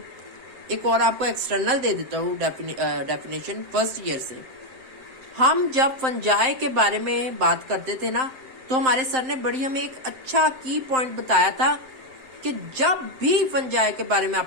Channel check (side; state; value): left; late; 7.6 ms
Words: एक और आपको एक्सटर्नल दे देता हूँ डेफिनेशन फर्स्ट ईयर से। हम जब फंजाई के बारे में बात करते थे ना, तो हमारे सर ने बड़ी हमें एक अच्छा की पॉइंट बताया था कि जब भी फंजाई के बारे में